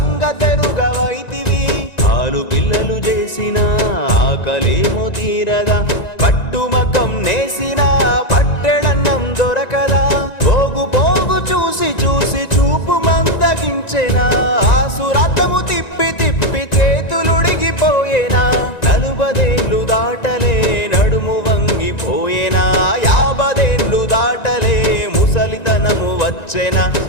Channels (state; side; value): late; right; 1.9 ms